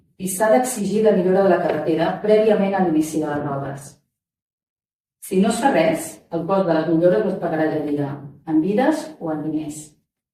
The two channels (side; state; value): both; identical; correlation 1.00